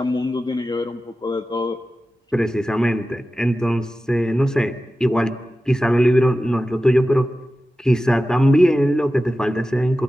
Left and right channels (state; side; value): normal; both; correlation 0.94